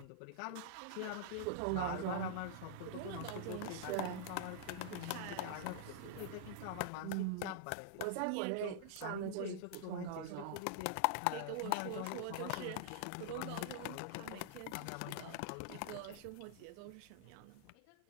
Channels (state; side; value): different; both; correlation -0.01